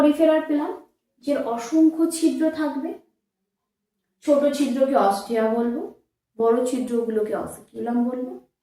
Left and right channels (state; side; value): identical; both; correlation 1.00